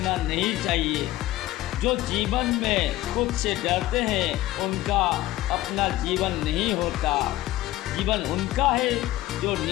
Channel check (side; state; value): right; quieter; 16.0 dB